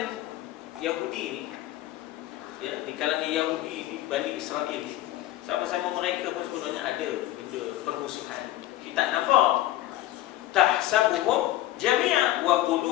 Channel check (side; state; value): right; quieter; 15.0 dB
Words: Yahudi ni, ya, di kalangan Yahudi ni, Bani Israel ni, sama-sama mereka pun sebenarnya ada benda permusuhan. Kita nampak tahsabuhum jami'a wa